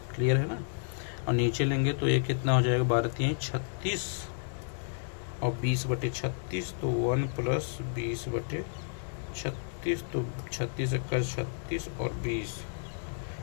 क्लियर है ना। और नीचे लेंगे तो ये कितना हो जाएगा? 12 3 36 और 20 बटे 36, तो 1 प्लस 20 बटे 36, तो 36 का 36 और 20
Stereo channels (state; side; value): silent; right; digital silence